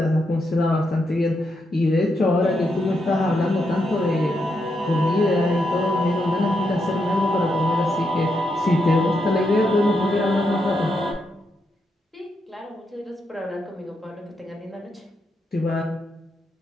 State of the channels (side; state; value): both; normal; correlation 0.82